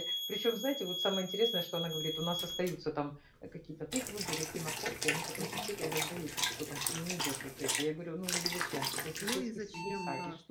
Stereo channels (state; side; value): identical; both; correlation 1.00